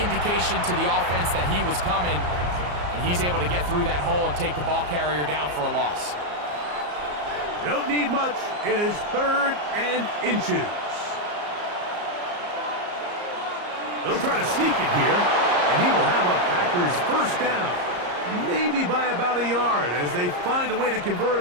indication to the offense that he was coming, and he's able to get through that hole and take the ball carrier down for a loss. Don't need much. It is 3rd and inches. They'll try to sneak it here, and he will have a Packers first down. Maybe by about a yard as they find a way to convert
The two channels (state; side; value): late; left; 34 ms